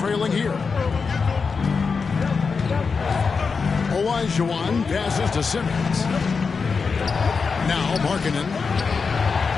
here. Olajuwon passes to Simmons. Now Markkanen.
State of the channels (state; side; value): quieter; right; 5.1 dB